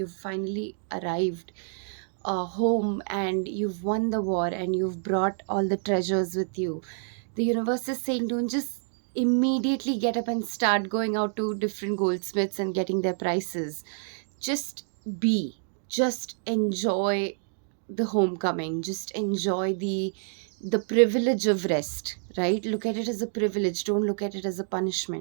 finally arrived home, and you've won the war, and you've brought all the treasures with you. The universe is saying, don't just immediately get up and start going out to different goldsmiths and getting their prices. Just be. Just enjoy the homecoming. Just enjoy the privilege of rest, right? Look at it as a privilege. Don't look at it as a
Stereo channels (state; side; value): silent; left; digital silence